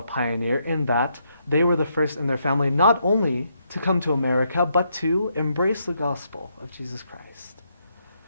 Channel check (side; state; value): both; inverted; correlation -0.77